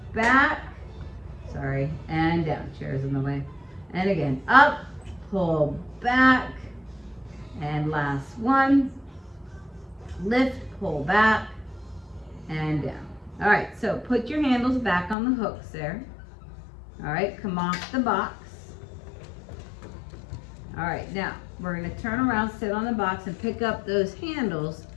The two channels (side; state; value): right; drops out; at 15.2 s